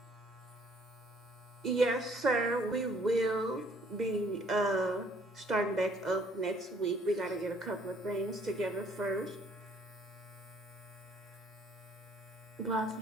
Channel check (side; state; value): both; normal; correlation 0.62